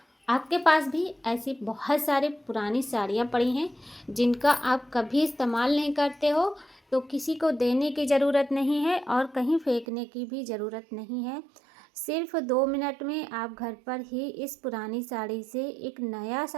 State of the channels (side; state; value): left; drops out; at 9.9 s